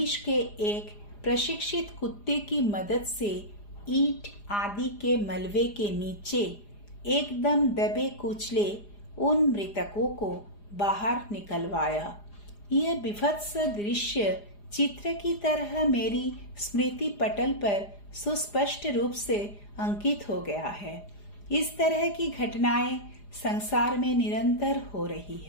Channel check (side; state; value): right; late; 4.9 ms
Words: के एक प्रशिक्षित कुत्ते की मदद से ईंट आदि के मलबे के नीचे एकदम दबे कुचले उन मृतकों को बाहर निकलवाया। यह विभत्स दृश्य चित्र की तरह मेरी स्मृति पटल पर सुस्पष्ट रूप से अंकित हो गया है। इस तरह की घटनाएं संसार में निरंतर हो रही